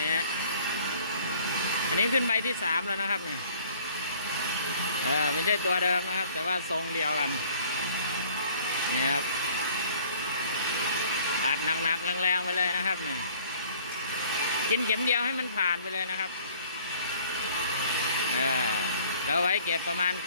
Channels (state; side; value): inverted; both; correlation -0.54